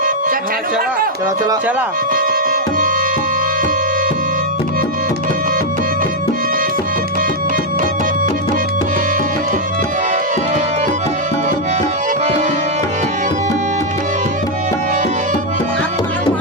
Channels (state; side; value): normal; both; correlation -0.01